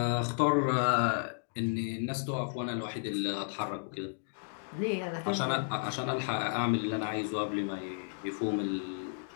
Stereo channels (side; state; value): right; silent; digital silence